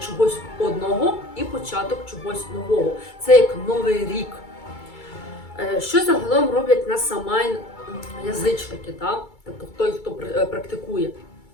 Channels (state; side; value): late; right; 2.3 ms